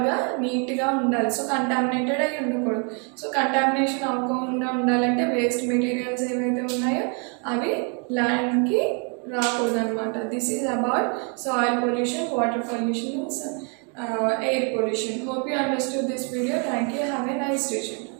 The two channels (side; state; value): left; quieter; 37.5 dB